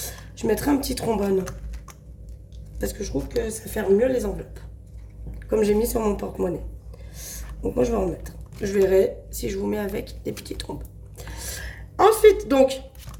je mettrais un petit trombone. Parce que je trouve que ça fait mieux les enveloppes. Comme j'ai mis sur mon porte-monnaie. Donc moi, je vais en mettre. Je verrai si je vous mets avec des petits trombones. Ensuite, donc,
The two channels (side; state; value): both; identical; correlation 1.00